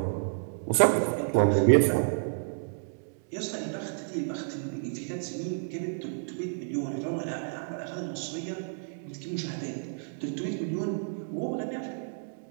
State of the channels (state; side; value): silent; left; digital silence